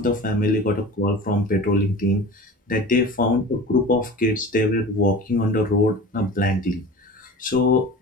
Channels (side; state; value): both; normal; correlation 0.36